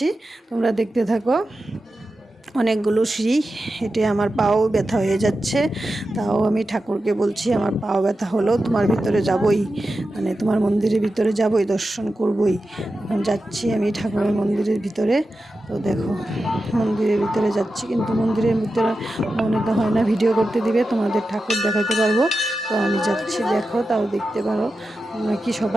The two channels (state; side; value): normal; both; correlation 0.91